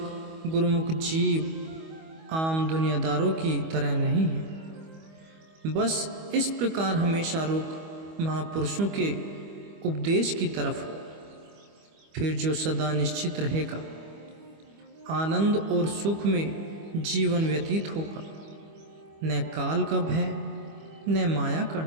गुरुमुख जीव आम दुनियादारों की तरह नहीं है। बस इस प्रकार हमेशा रुख महापुरुषों के उपदेश की तरफ हो, फिर जो सदा निश्चित रहेगा, आनंद और सुख में जीवन व्यतीत होगा। न काल का भय, न माया का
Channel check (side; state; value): left; late; 25 ms